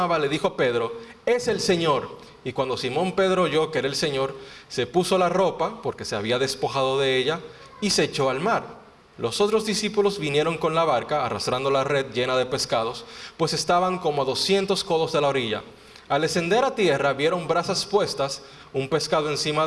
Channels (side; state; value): both; identical; correlation 1.00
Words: le dijo a Pedro: es el Señor. Y cuando Simón Pedro oyó que era el Señor, se puso la ropa, porque se había despojado de ella, y se echó al mar. Los otros discípulos vinieron con la barca, arrastrando la red llena de pescados, pues estaban como a 200 codos de la orilla. Al descender a tierra, vieron brasas puestas, un pescado encima